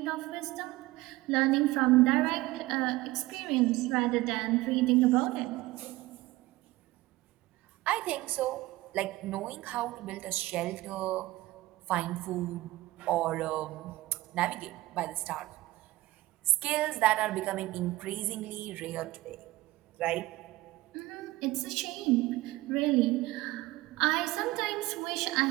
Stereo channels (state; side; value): quieter; left; 18.6 dB